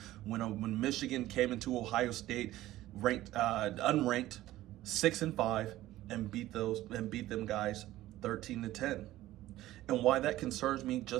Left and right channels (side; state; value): left; quieter; 15.4 dB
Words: When Michigan came into Ohio State ranked unranked 6-5 and beat them guys 13-10. And why that concerns me,